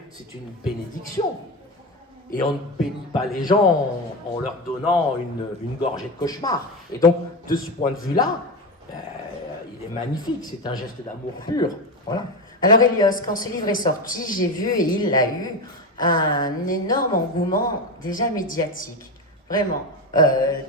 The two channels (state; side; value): normal; both; correlation 0.18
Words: c'est une bénédiction. Et on ne bénit pas les gens en leur donnant une gorgée de cauchemar. Et donc, de ce point de vue-là, il est magnifique, c'est un geste d'amour pur. Voilà. Alors Elios, quand ce livre est sorti, j'ai vu, et il l'a eu, un énorme engouement déjà médiatique. Vraiment. Tu